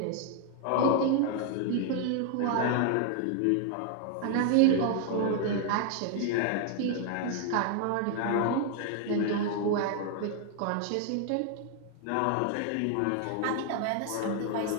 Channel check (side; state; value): both; different; correlation 0.00